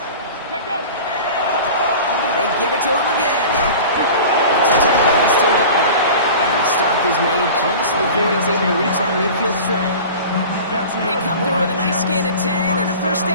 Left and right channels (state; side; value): inverted; both; correlation -0.37